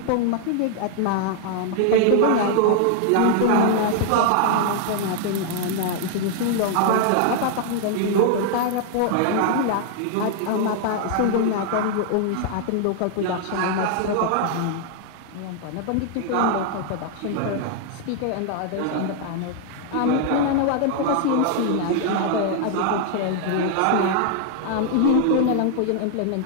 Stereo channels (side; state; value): both; different; correlation 0.00